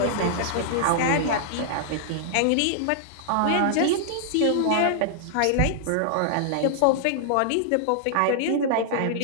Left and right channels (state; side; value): different; both; correlation -0.01